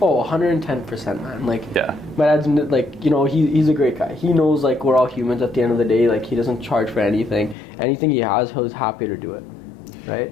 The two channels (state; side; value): drops out; right; at 7.6 s